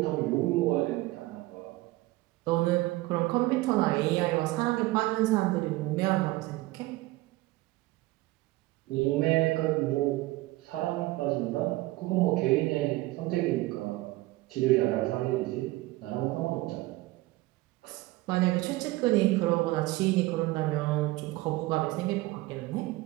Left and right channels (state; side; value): quieter; left; 19.4 dB